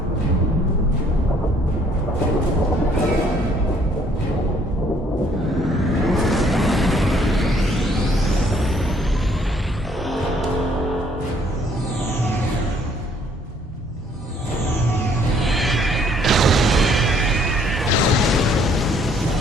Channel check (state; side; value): normal; both; correlation 0.63